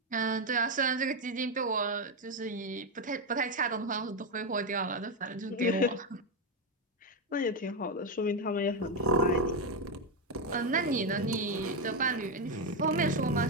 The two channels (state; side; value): normal; both; correlation 0.06